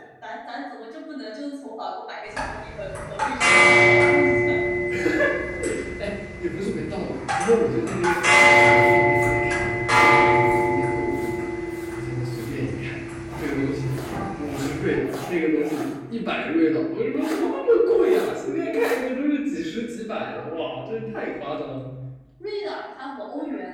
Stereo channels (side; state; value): both; identical; correlation 1.00